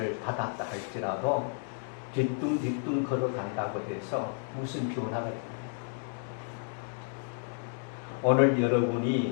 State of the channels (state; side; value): silent; right; 57 dB below the other